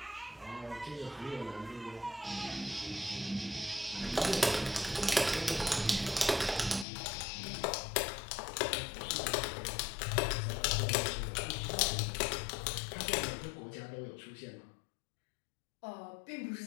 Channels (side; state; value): right; drops out; at 6.9 s